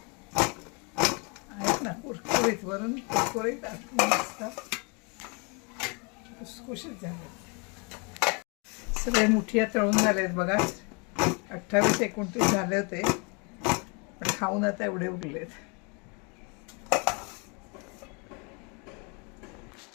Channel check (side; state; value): right; quieter; 32.8 dB